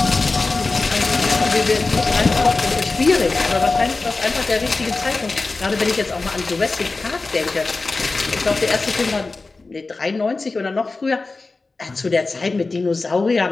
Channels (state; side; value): quieter; right; 3.7 dB